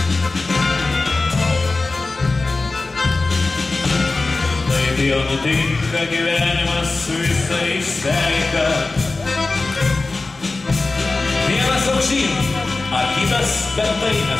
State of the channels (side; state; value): right; quieter; 3.5 dB